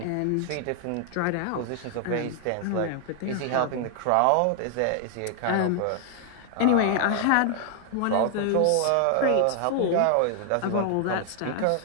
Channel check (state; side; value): different; both; correlation 0.00